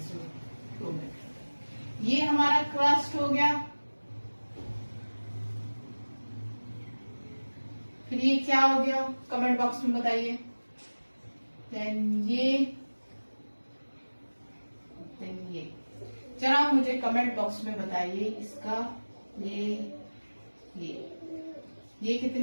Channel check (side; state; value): both; inverted; correlation -1.00